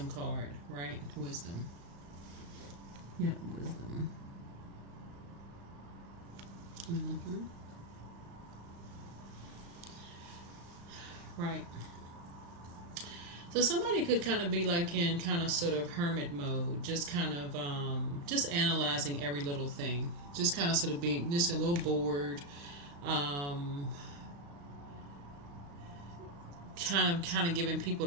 card, right? Wisdom. Yep, Wisdom. Right. So somebody could kind of be like in kind of sort of hermit mode, just kind of just analyzing every little thing, just kind of sort of being just a little bored, um, kind of giving people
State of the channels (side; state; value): left; late; 35 ms